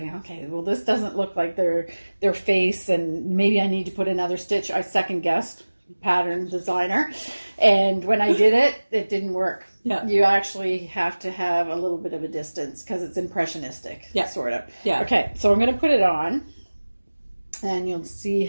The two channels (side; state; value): both; inverted; correlation -1.00